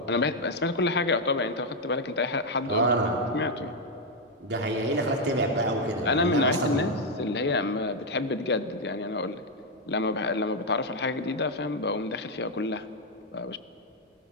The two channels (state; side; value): normal; both; correlation 0.02